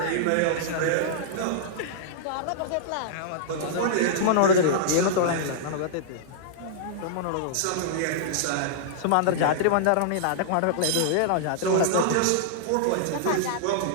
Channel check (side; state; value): both; different; correlation -0.02